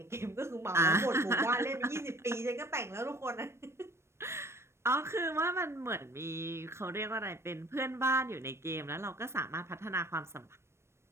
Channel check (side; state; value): left; late; 0.13 ms